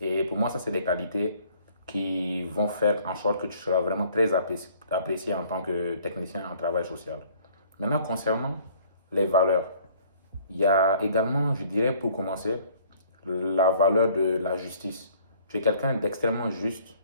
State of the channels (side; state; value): both; inverted; correlation -0.57